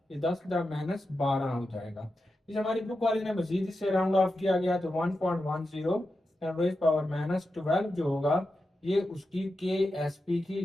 ये 10 का -12 हो जाएगा। इस हमारी बुक वाले ने मजीद इससे राउंड ऑफ किया गया तो 1.10 रेज़ पावर -12 जो होगा ये उसकी के एस पी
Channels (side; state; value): both; normal; correlation 0.90